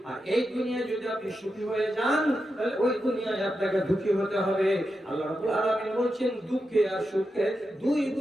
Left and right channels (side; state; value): both; normal; correlation 0.88